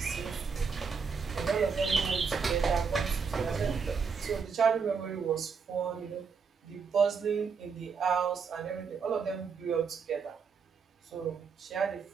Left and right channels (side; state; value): left; quieter; 5.7 dB